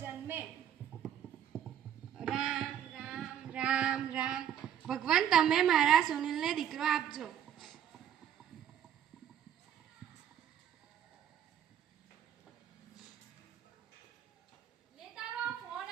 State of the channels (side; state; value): left; quieter; 9.9 dB